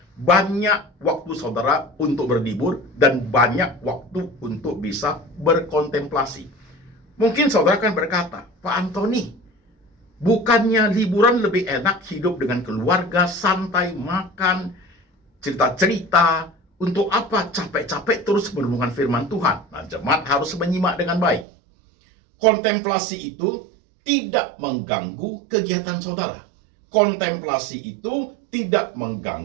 Banyak waktu saudara untuk berlibur dan banyak waktu untuk bisa berkontemplasi. Mungkin saudara akan berkata, Pak Anthony, bukannya liburan lebih enak hidup dengan keluarga, santai, makan, cerita-cerita, untuk apa capek-capek terus merenungkan firman Tuhan? Nah, jemaat harus menyimak dengan baik. Kontemplasi itu tidak mengganggu kegiatan saudara. Kontemplasi itu tidak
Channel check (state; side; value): drops out; left; at 21.5 s